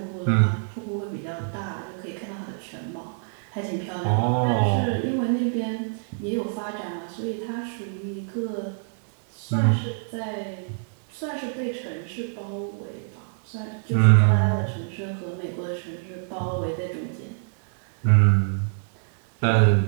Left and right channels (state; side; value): silent; left; digital silence